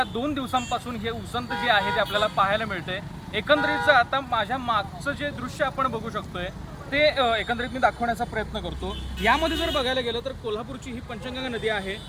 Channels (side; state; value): both; identical; correlation 1.00